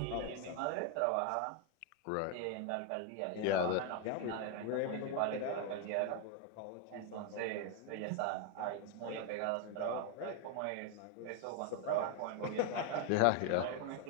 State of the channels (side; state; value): both; different; correlation 0.01